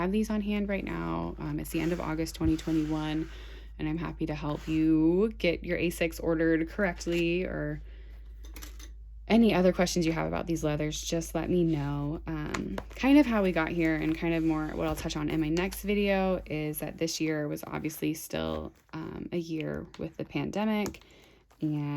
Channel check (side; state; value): both; identical; correlation 1.00